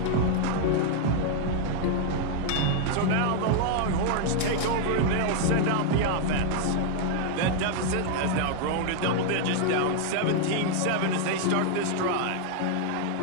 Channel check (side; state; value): both; different; correlation 0.00